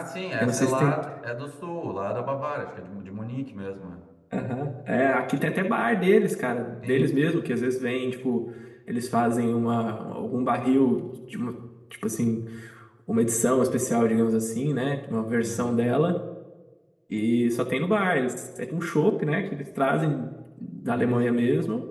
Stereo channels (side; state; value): both; identical; correlation 1.00